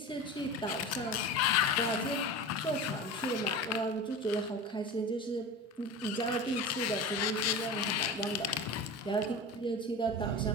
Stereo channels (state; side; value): normal; both; correlation 0.31